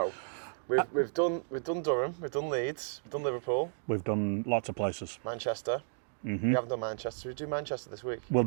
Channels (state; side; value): silent; left; digital silence